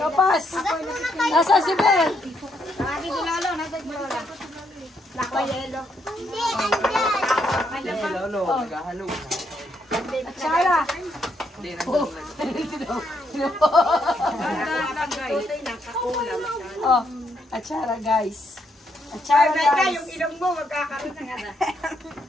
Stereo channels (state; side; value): normal; both; correlation 0.76